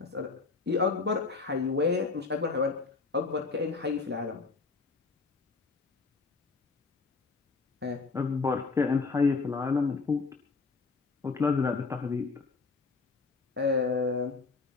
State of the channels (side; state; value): right; quieter; 4.3 dB